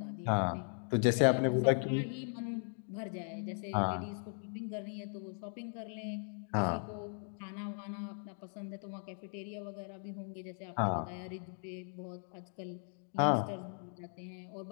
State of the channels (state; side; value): silent; right; 52 dB below the other